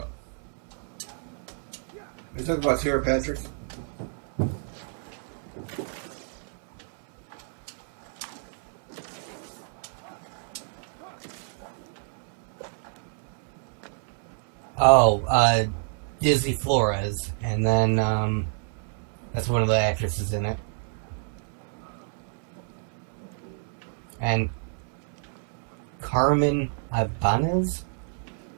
Are you talking about Tara Patrick? Oh, Dizzy Flores, and then that's one of the actresses in it. And Carmen Ibanez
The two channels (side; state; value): left; silent; 56 dB below the other